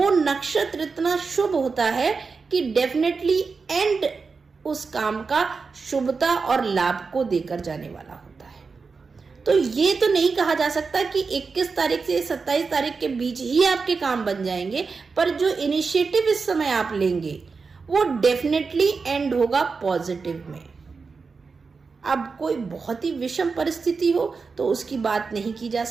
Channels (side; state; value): left; quieter; 4.7 dB